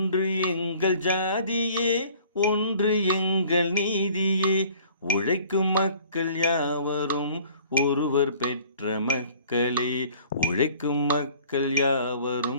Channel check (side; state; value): both; inverted; correlation -0.52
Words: எங்கள் ஜாதியே, ஒன்று எங்கள் நீதியே, உழைக்கும் மக்கள் யாவரும் ஒருவர் பெற்ற மக்களே, உழைக்கும் மக்கள்